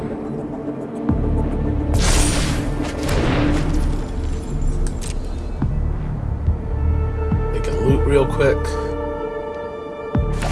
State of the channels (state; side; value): identical; both; correlation 1.00